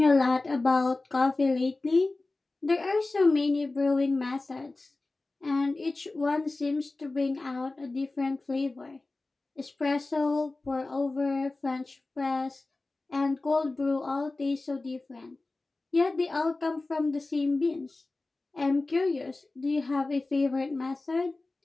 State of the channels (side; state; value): right; quieter; 3.2 dB